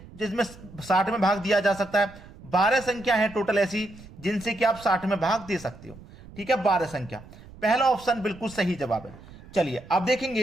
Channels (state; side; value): noise; right; rumble, 19 dB below the sound